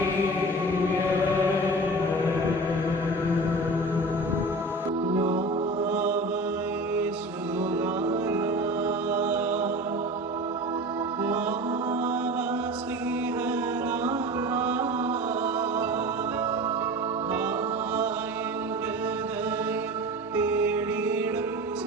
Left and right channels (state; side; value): normal; both; correlation 0.35